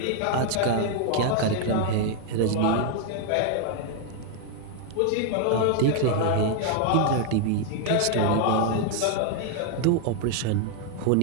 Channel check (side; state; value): both; different; correlation 0.00